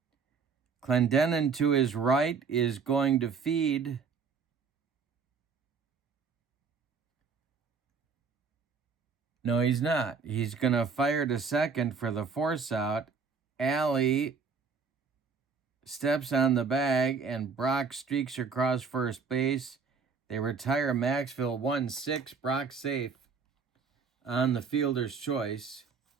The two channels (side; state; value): left; quieter; 5.4 dB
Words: Clendenin to his right is going to feed No, he's not. He's going to fire to second for the force out. Alley steps on the bag, and Brock streaks across first base. They retire Maxville 1-6. Brock safe on the fielder's choice.